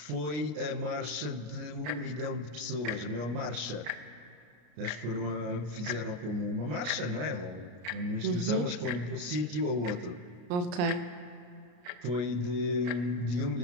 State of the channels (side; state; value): left; late; 33 ms